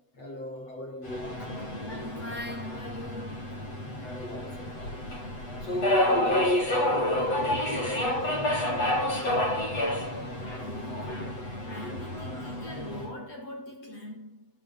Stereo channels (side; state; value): right; late; 8.0 ms